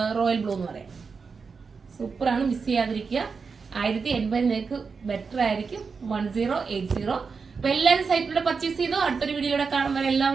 റോയൽ ബ്ലൂ എന്ന് പറയാം. സൂപ്പറാണ്, മിസ് ചെയ്യാതിരിക്കുക. 1080 നിങ്ങൾക്ക് ബെറ്റർ ആയിരിക്കും. 1080. അപ്പൊ എല്ലാവരും സൈറ്റിലൂടെ പർച്ചേസ് ചെയ്തോ. അടുത്തൊരു വീഡിയോയിലൂടെ കാണുമ്പോൾ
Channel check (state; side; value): quieter; left; 5.2 dB